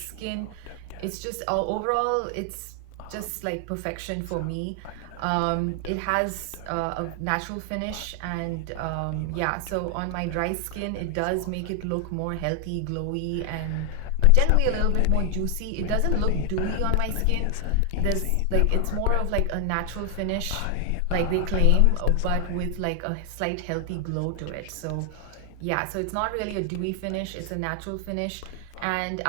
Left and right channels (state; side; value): different; both; correlation 0.00